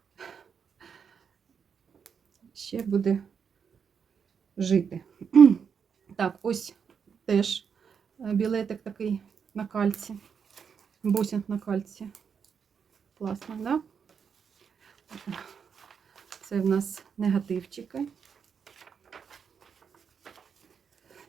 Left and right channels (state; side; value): quieter; left; 6.7 dB